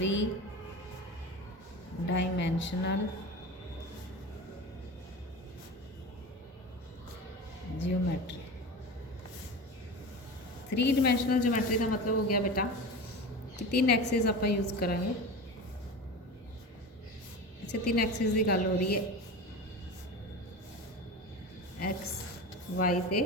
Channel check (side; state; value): both; normal; correlation 0.29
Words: dimensional geometry. 3 dimensional geometry का मतलब हो गया बेटा कि 3 एक्सिस आप यूज़ करांगे। अच्छा 3 एक्सिस की गल हो रही है, एक्स वाई ते